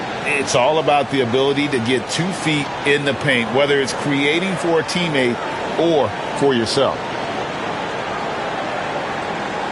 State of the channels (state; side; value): identical; both; correlation 1.00